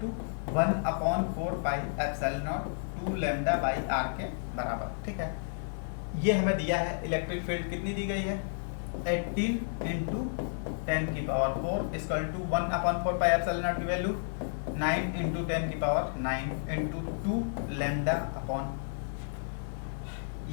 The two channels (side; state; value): right; silent; 57 dB below the other